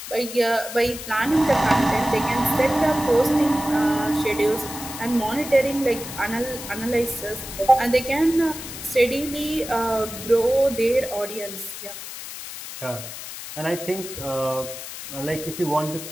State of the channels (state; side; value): noise; left; hiss, 10 dB below the sound